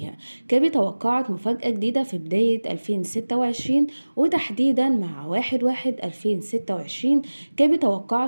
كابي توقعت مفاجأة جديدة في بداية 2026 وتحديدا مع 1/1/2026. كابي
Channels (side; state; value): both; inverted; correlation -1.00